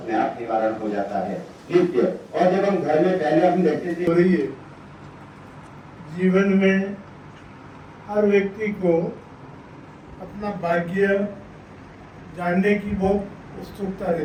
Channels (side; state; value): both; identical; correlation 1.00